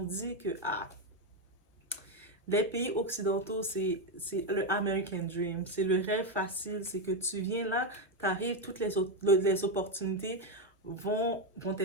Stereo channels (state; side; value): normal; both; correlation 0.07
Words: dit que les pays occidentaux, c'est le American Dream. C'est le rêve facile. C'est que tu viens là, tu arrives, toutes les opportunités vont